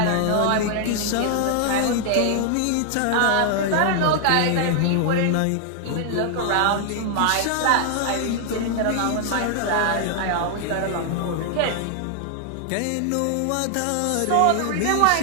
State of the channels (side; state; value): both; different; correlation 0.00